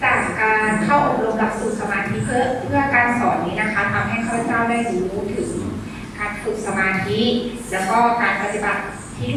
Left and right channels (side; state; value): both; identical; correlation 1.00